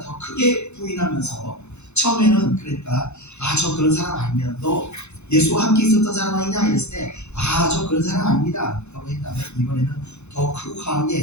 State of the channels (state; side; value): late; right; 0.81 ms